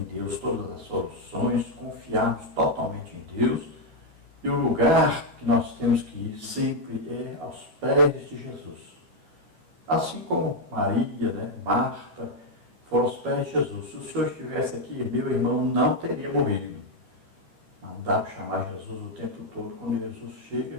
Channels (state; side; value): late; left; 12 ms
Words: Deus todas as soluções, confiarmos totalmente em Deus. E o lugar que nós temos que ir sempre é aos pés de Jesus. Assim como Maria, né, Marta, foram aos pés de Jesus. Se o Senhor estivesse aqui, meu irmão não teria morrido. Não dá para chamar Jesus o tempo todo. Quando Jesus